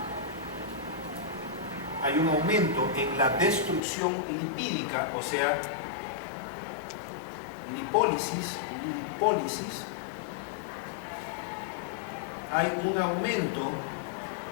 hay un aumento en la destrucción lipídica, o sea, lipólisis, hay un aumento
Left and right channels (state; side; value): drops out; right; at 3.8 s